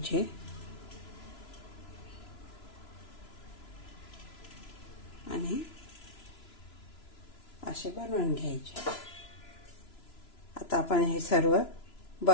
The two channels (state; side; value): late; right; 3.0 ms